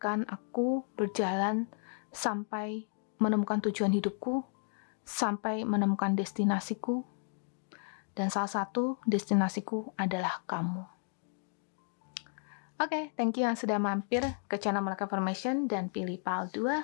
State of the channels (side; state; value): right; silent; 56 dB below the other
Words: aku berjalan sampai menemukan tujuan hidupku, sampai menemukan destinasiku, dan salah satu destinasiku adalah kamu. Oke, thank you yang sudah mampir ke channel Melaka Formation dan pilih PAL